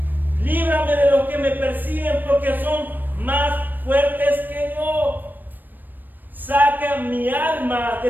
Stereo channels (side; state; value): left; late; 0.091 ms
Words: Líbrame de los que me persiguen, porque son más fuertes que yo. Saca mi alma